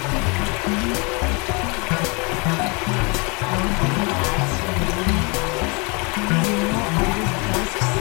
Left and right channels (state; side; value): quieter; right; 30.8 dB